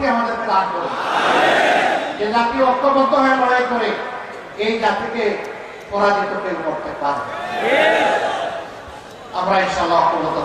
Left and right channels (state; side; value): identical; both; correlation 1.00